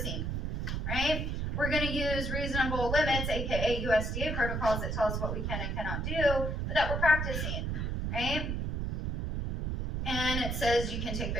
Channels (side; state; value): right; noise; rumble, 1 dB below the sound